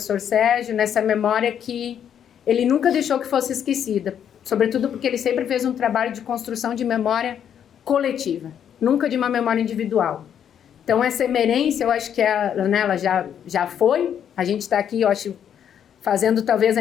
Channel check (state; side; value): quieter; right; 9.0 dB